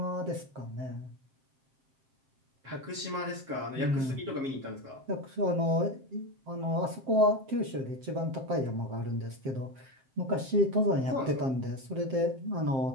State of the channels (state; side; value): late; left; 7.6 ms